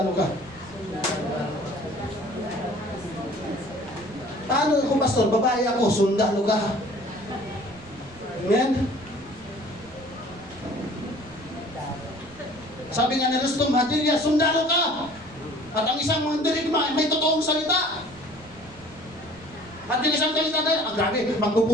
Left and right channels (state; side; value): noise; right; rumble, 21 dB below the sound